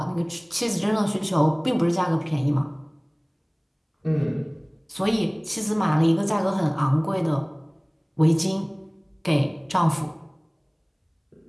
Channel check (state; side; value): identical; both; correlation 1.00